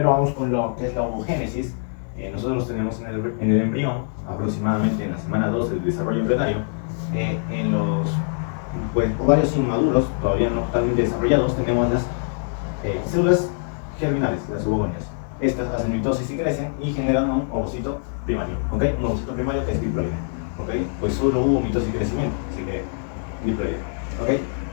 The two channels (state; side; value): silent; right; digital silence